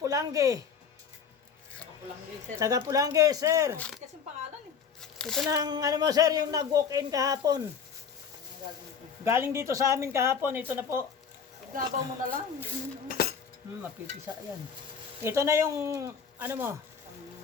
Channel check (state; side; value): quieter; right; 6.6 dB